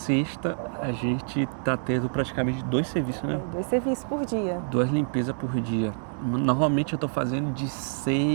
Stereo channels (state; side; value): silent; left; 60 dB below the other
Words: a gente tá tendo praticamente 2 serviços, né? 2 serviços por dia. 2 limpezas por dia. Normalmente eu tô fazendo de